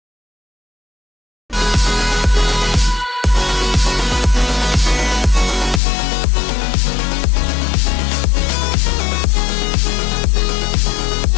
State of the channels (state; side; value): drops out; right; at 5.8 s